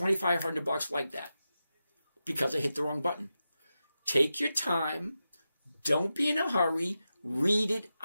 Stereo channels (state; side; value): inverted; both; correlation -0.91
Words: like that because I hit the wrong button. Take your time. Don't be in a hurry. Read it